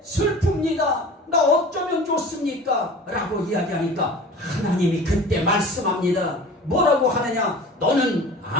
슬픕니다, 나 어쩌면 좋습니까? 라고 이야기하니까 하나님이 그때 말씀합니다. 뭐라고 하느냐? 너는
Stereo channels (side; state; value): both; normal; correlation 0.40